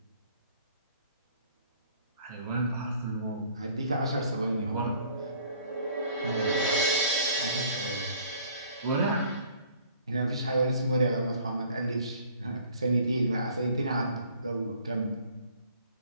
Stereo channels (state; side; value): inverted; both; correlation -0.56